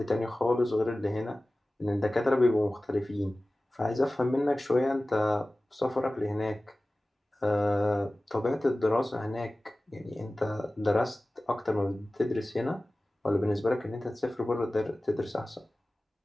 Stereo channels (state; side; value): normal; both; correlation 0.97